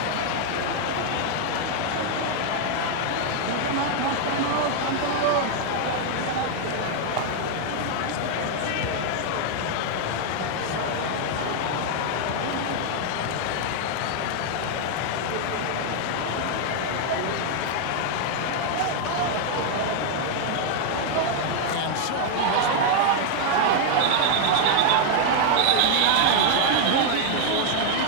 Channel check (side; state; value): both; different; correlation 0.00